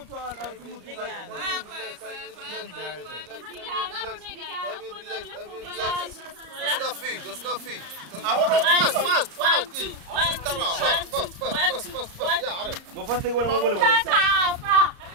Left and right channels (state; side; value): late; left; 34 ms